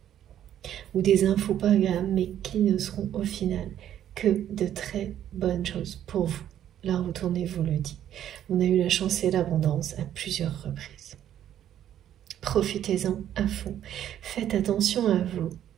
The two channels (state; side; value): quieter; left; 10.9 dB